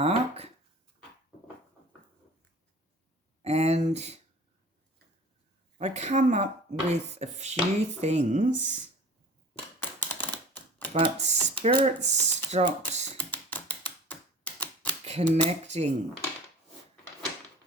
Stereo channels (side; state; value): both; normal; correlation 0.42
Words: And I come up with a few things, but Spirit stopped connecting.